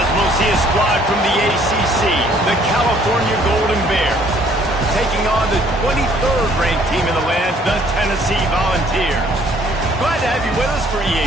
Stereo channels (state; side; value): normal; both; correlation 0.61